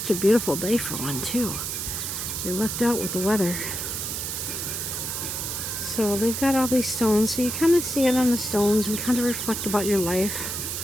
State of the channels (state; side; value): noise; right; hiss, 4 dB below the sound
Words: a beautiful day for one too. They lucked out with the weather. So they've got all these stones, so you kind of stand on the stones and kind of reflect about your life.